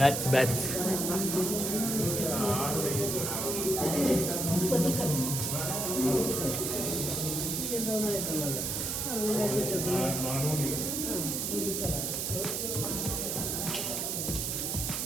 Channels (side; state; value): right; noise; hiss, 1 dB below the sound